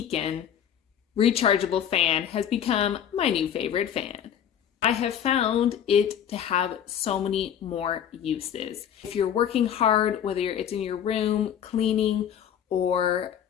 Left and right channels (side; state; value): right; quieter; 9.3 dB